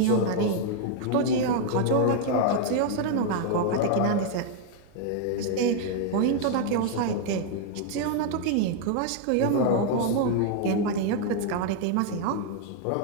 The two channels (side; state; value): both; different; correlation 0.00